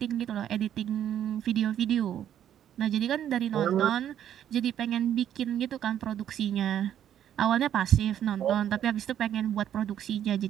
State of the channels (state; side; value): quieter; left; 10.3 dB